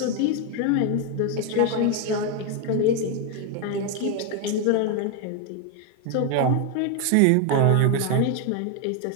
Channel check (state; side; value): different; both; correlation 0.01